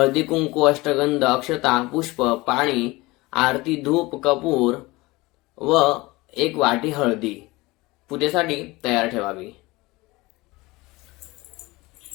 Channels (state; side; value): quieter; right; 21.6 dB